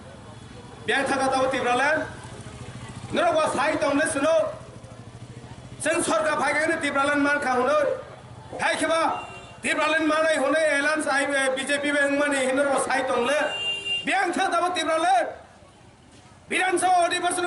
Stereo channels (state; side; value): identical; both; correlation 1.00